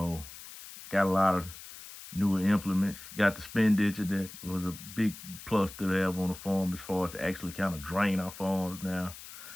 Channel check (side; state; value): left; noise; hiss, 15 dB below the sound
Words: a lot of newer implements. Got the spin ditcher that was a big plus to have on the farm as far as to actually kind of drain our farms now.